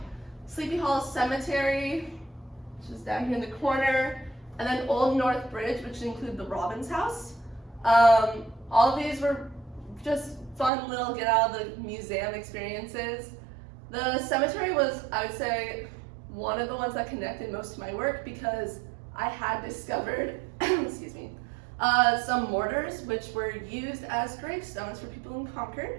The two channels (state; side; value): drops out; left; at 10.7 s